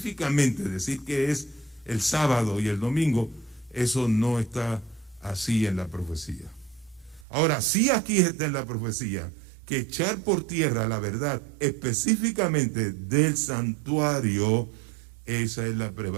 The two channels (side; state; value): left; drops out; at 7.2 s